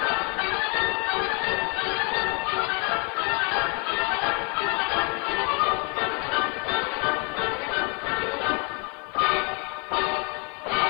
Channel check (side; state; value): right; quieter; 34.1 dB